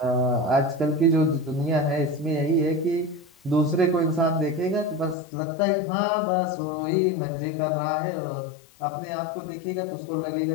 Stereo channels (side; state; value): right; drops out; at 5.2 s